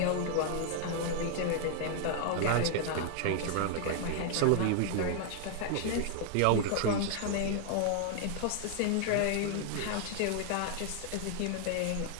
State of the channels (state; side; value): different; both; correlation 0.00